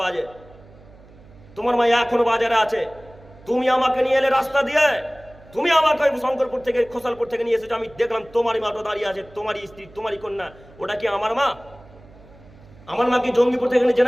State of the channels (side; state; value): right; noise; hum, 24 dB below the sound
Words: বাজে। তোমার মা এখনো বাজারে আছে। তুমি আমাকে নিয়ে এলে রাস্তা দিয়ে, তুমি আমাকে শঙ্করপুর থেকে খোসালপুর থেকে নিয়ে এসেছো। আমি দেখলাম তোমারই মাটা দাঁড়িয়ে আছে, তোমারই স্ত্রী, তোমারই কন্যা। ওটা কি আমার মা? আমার মা কি জঙ্গিপুর থেকে